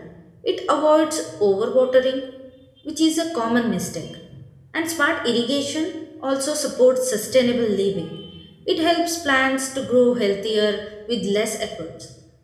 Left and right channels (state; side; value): identical; both; correlation 1.00